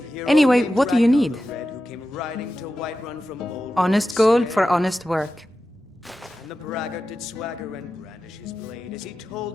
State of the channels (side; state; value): both; normal; correlation 0.92